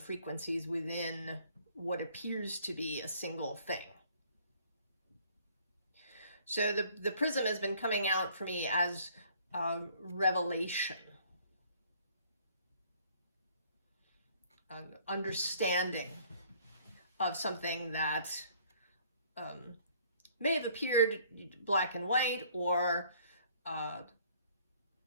within what appears to be a single thing. So the prism has been coming out for me as revelation, an understanding of something that may have appeared black and white, or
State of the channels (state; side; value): inverted; both; correlation -0.59